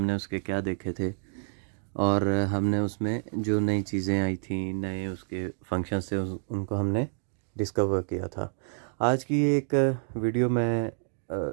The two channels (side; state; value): left; silent; digital silence